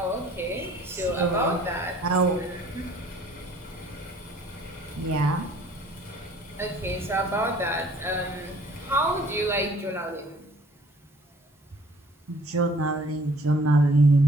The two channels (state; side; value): normal; both; correlation 0.55